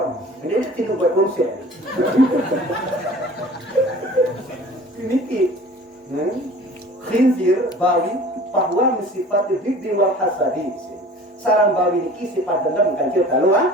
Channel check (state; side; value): normal; both; correlation 0.44